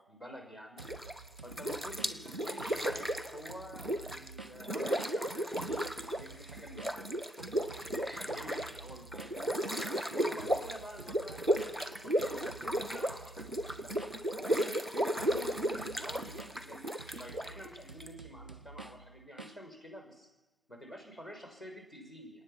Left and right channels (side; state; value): both; normal; correlation 0.72